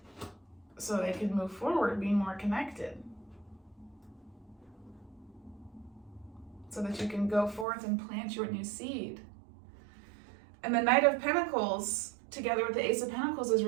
so they can move forward, being more connected. So that you can go forth and plant your new seed. And the Knight of Pentacles together with the Ace of Pentacles is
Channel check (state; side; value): drops out; left; at 7.7 s